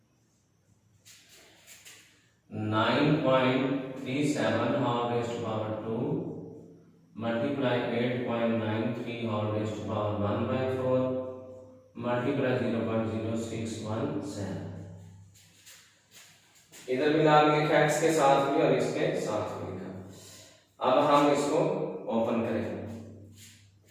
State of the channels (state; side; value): identical; both; correlation 1.00